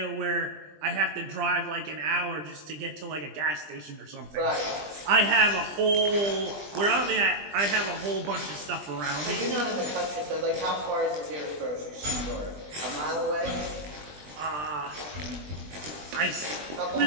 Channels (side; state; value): left; late; 20 ms